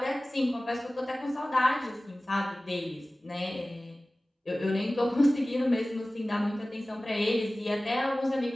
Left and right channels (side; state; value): both; normal; correlation 0.97